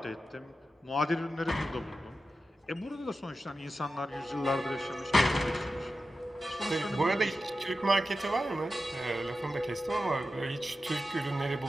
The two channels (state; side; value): normal; both; correlation 0.92